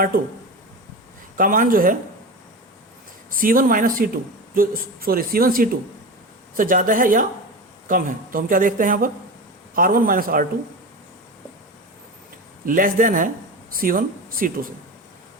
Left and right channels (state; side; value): normal; both; correlation 0.26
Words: का मान जो है C1 माइनस C2 जो C1 C2 से ज़्यादा है या कम है। तो हम क्या देखते हैं यहाँ पर R1 minus R2 less than है C1 C2 से।